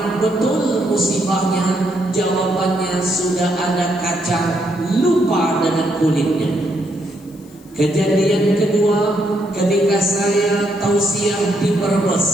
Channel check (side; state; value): left; noise; hiss, 27 dB below the sound